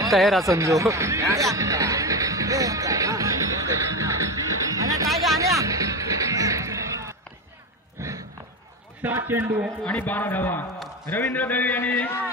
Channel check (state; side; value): normal; both; correlation 0.20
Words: तयार असन जो. 7 चेंडू आणि 12 धावा. रवींद्र दळवी यांनी